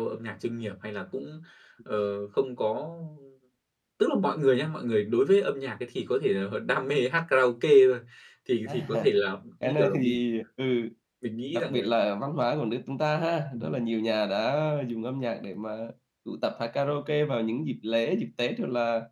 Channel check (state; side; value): identical; both; correlation 1.00